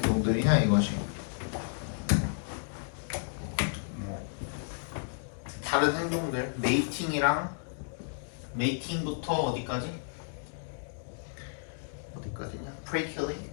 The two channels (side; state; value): right; silent; digital silence